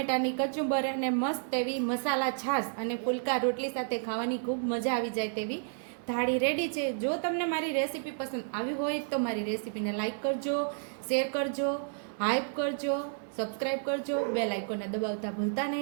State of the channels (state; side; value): silent; left; digital silence